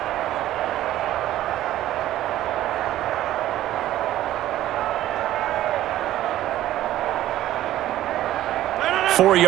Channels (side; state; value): left; quieter; 13.8 dB